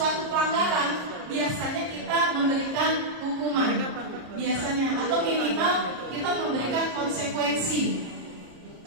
pelanggaran, biasanya kita memberikan hukuman, biasanya atau minimal kita memberikan konsekuensi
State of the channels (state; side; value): late; left; 33 ms